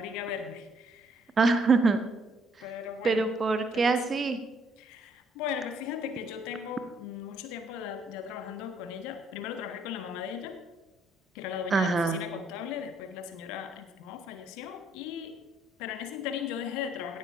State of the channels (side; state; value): both; normal; correlation 0.67